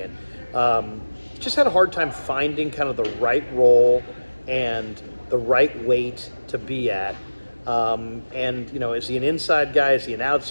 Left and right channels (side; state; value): both; inverted; correlation -1.00